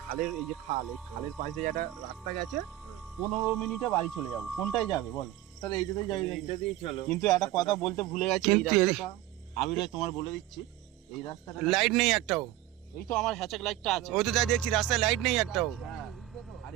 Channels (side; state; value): left; quieter; 14.6 dB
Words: খালের এই যে খাল, এই খালের পাশে একটা রাস্তা গেছে, 15 মিনিটে বাড়ি চলে যাবো। কোনটায় যাবে বলো? তাহলে এইটাতেই যাই। এইটা দিয়েই চলো। কিন্তু একটা কথা বলতে ভুলে গেছি, এই কিন্তু রাস্তাটা আমি তোমার বলে দিচ্ছি, এই রাস্তাটা লাইট নেই একটাও। এই তো আমার হ্যাচাক লাইটটা আছে। ওই তো যাই দেখছি রাস্তায় লাইট নেই একটাও। হ্যাঁ, আর